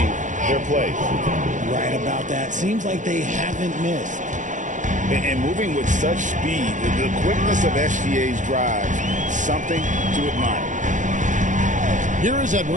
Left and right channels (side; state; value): left; late; 0.36 ms